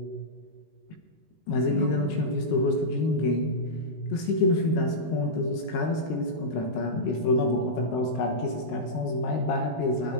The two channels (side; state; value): right; late; 19 ms